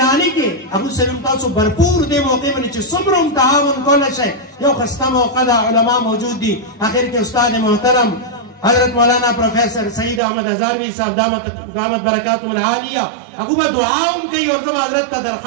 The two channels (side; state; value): left; drops out; at 10.2 s